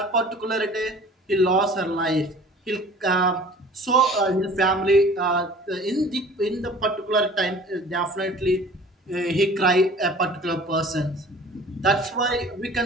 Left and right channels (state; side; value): normal; both; correlation 0.47